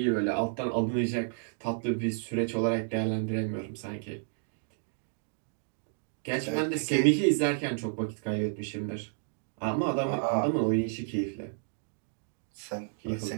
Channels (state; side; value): silent; left; digital silence